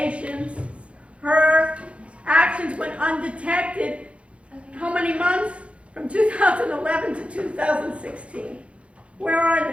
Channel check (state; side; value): late; left; 0.061 ms